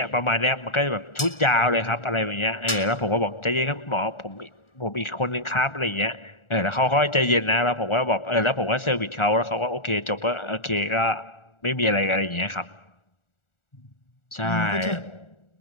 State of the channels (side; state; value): right; late; 1.4 ms